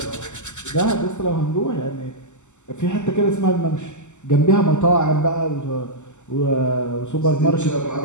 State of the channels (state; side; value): late; right; 0.84 ms